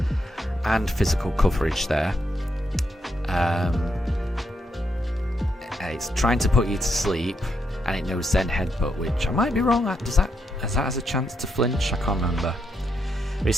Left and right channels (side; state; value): both; normal; correlation 0.80